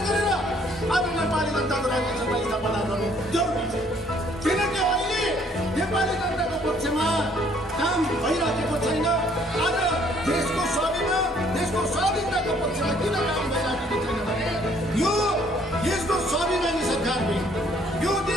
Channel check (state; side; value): normal; both; correlation 0.62